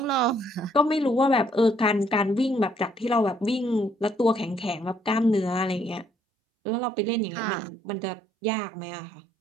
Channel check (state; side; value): drops out; left; at 6.1 s